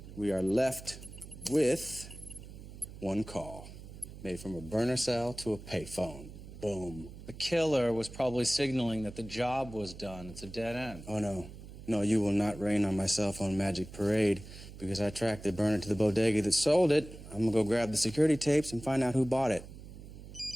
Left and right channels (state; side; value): noise; right; hum, 15 dB below the sound